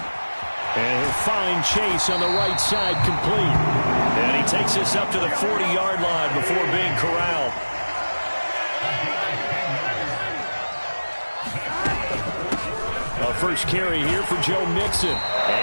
And he'll find Chase on the right side complete. And he takes this up to the 40-yard line before being corralled. A first carry here for Joe Mixon.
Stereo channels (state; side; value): inverted; both; correlation -1.00